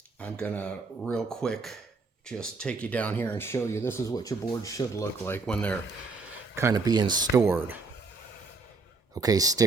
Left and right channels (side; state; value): left; quieter; 3.9 dB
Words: gonna real quick just take you down here and show you this is what your boards should look like when they're kind of being stored. Okay,